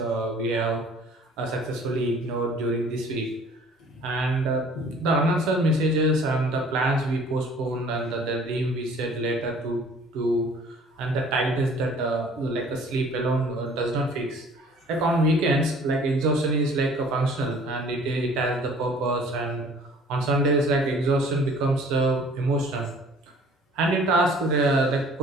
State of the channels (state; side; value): normal; both; correlation 0.52